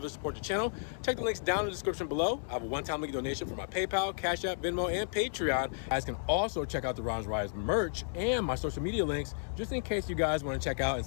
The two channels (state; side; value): silent; right; digital silence